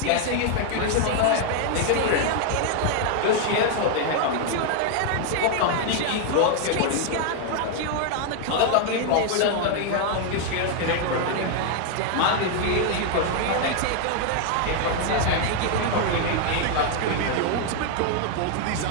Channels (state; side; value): different; both; correlation 0.00